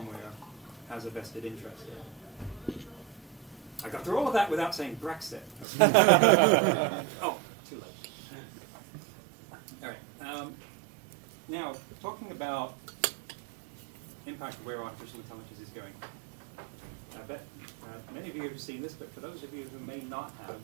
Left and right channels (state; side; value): drops out; left; at 5.7 s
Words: has a vested interest in. I got through all of that without saying Brexit. Oh, too late. All right. Now, talking about impact of where artificial intelligence is going. I bet many of you have seen this, but for those of you who may not have,